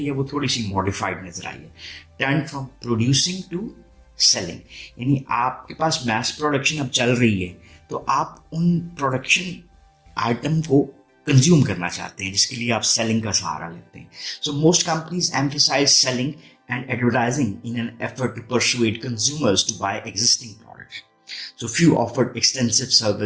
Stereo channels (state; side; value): identical; both; correlation 1.00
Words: है वो थोड़ी सी मॉडिफाइड नजर आई है. Turn from producing to selling, यानी आपके पास मैस प्रोडक्शन अब चल रही है तो आप उन प्रोडक्शन आइटम को कंज्यूम करना चाहते हैं, जिसके लिए आप सेलिंग का सहारा लेते हैं. So most companies emphasize selling and advertising in an effort to persuade consumers to buy existing products. So few offered extensive